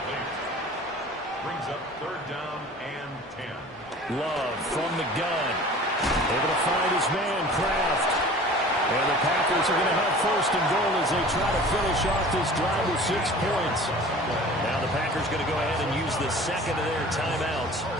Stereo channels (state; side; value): normal; both; correlation 0.44